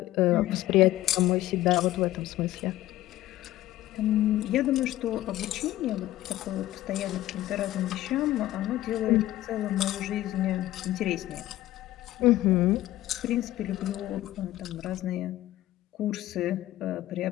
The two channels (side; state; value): right; quieter; 15.0 dB